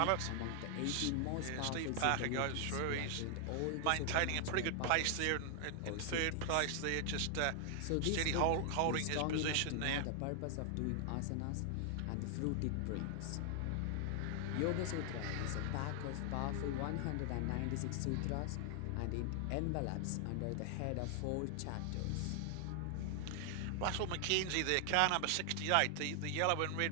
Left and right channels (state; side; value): different; both; correlation 0.00